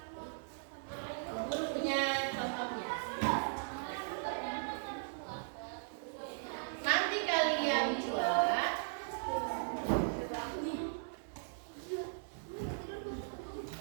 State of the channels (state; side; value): silent; left; digital silence